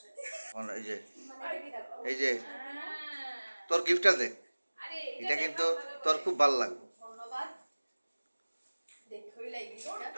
এই যে তোর গিফটটা দেখ, এটা কিন্তু তোর খুব ভালো লাগবে। ধন্যবাদ। দেখই লাগি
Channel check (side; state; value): both; inverted; correlation -1.00